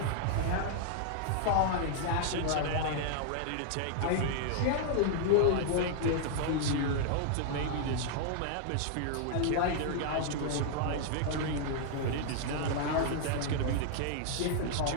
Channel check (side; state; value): both; different; correlation -0.01